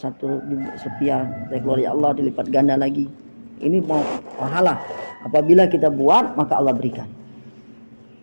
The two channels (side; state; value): both; inverted; correlation -1.00